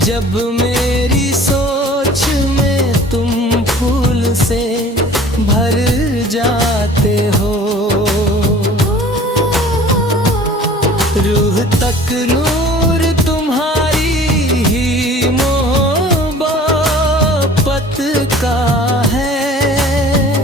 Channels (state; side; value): normal; both; correlation 0.47